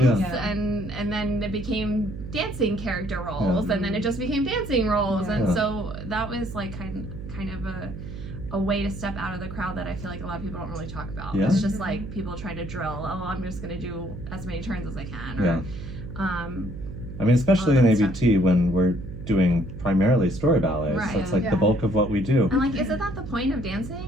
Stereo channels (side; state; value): right; noise; hum, 10 dB below the sound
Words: and then it became dancing character roles, and then it just became dancing roles, and so that was like kind of a way to step out of the crowd that I feel like a lot of people don't really talk about. It's just like people try to drill, I'm just gonna do as many turns as I can, or especially in ABT when we're doing primarily story ballets. So it's like the bulk of what we do. And like, isn't that the point of